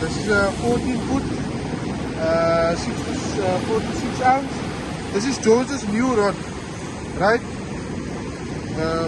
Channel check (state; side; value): identical; both; correlation 1.00